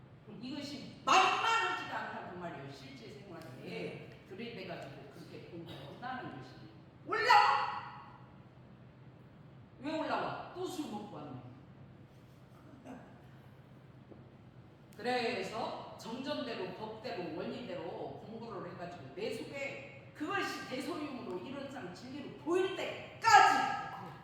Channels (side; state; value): both; identical; correlation 1.00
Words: 이것이 만만하지가 않다고 말이에요. 실제 생활에 들이대가지고 그렇게 공부한다는 것이 올라와. 왜 올라와? 또 술 먹고 왔네. 그래서 정전대로 법대로 원리대로 공부를 해가지고 내 속에 그것이 대소유무로 이론상 진리로 보일 때까지